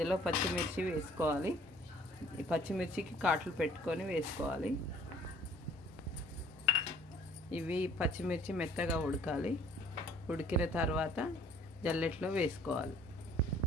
పచ్చిమిర్చి వేసుకోవాలి. ఈ పచ్చిమిర్చికి కాట్లు పెట్టుకొని వేసుకోవాలి. ఇవి పచ్చిమిర్చి మెత్తగా ఉడకాలి. ఉడికిన తర్వాత జల్లెట్లో వేసుకోవాలి.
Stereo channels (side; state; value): both; normal; correlation 0.56